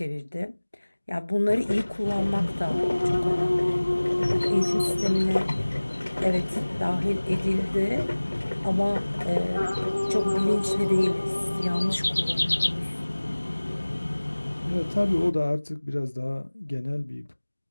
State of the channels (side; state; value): both; inverted; correlation -1.00